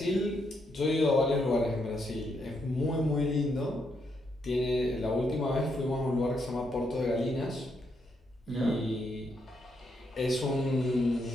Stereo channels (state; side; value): normal; both; correlation 0.78